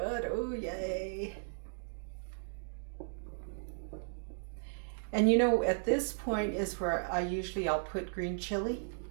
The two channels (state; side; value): silent; left; digital silence